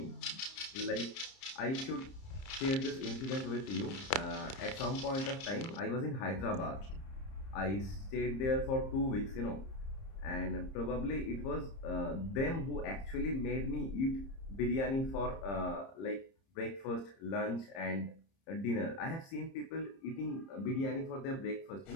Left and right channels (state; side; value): late; right; 30 ms